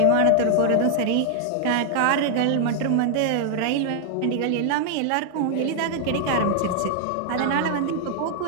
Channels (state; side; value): different; both; correlation 0.00